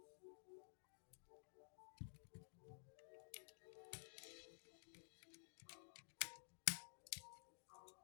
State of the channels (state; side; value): silent; right; digital silence